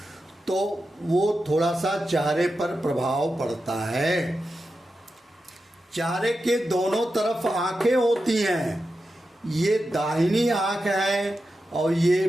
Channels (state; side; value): normal; both; correlation 0.90